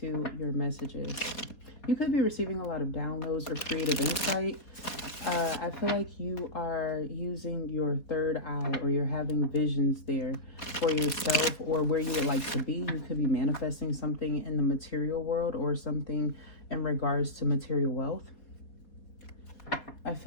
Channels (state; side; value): late; right; 3.9 ms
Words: your messages. You could be receiving a lot of downloads or creative insight. I feel like you are using your third eye, or you're having visions there for yourself or where you would like to be. You could be manifesting something in the material world or something in regards to material wealth. I